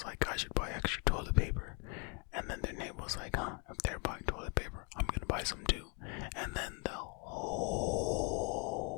like, I should buy extra toilet paper. And then their neighbor was like, if they're buying toilet paper, I'm gonna buy some too. And then the whole,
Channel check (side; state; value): right; quieter; 33.8 dB